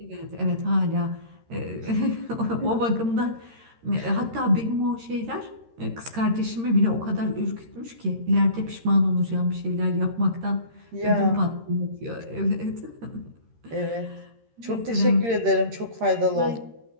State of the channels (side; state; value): left; late; 13 ms